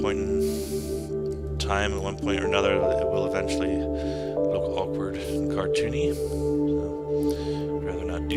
point in time, at one point or another, it will eventually look awkward and cartoony. I'd rather not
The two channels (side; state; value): both; identical; correlation 1.00